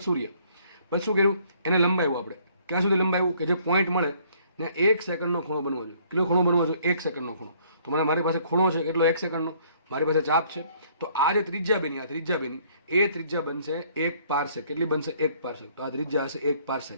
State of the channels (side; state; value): both; inverted; correlation -0.62